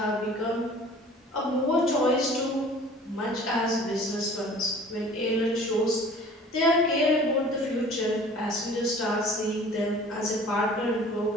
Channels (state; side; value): normal; both; correlation 0.47